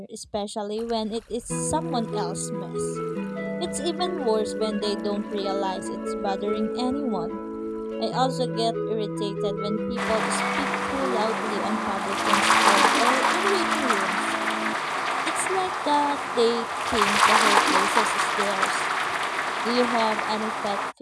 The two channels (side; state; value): both; identical; correlation 1.00